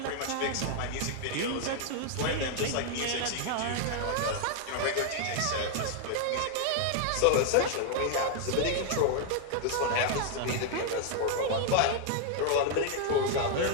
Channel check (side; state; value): both; different; correlation 0.00